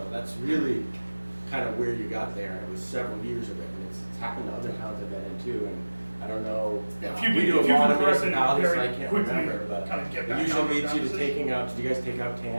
that's really kind of where you got there, and it was several years of it, and it's happened to other towns I've been in too, and I don't know. Yeah, if you We can- do if a you lot can of correct it municipalities, so very I can't quickly, remember, but kinda get it back usually down to leads that you to position. taking out, do you guys take out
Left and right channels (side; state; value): both; inverted; correlation -1.00